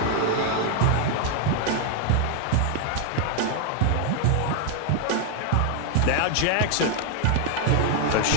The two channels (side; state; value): both; different; correlation 0.00